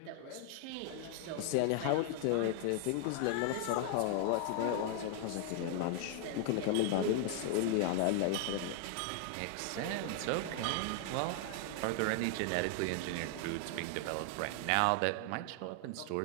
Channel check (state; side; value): different; both; correlation 0.00